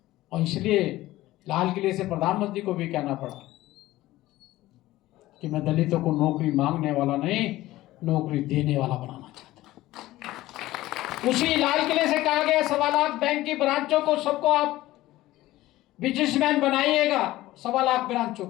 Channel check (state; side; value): quieter; right; 16.6 dB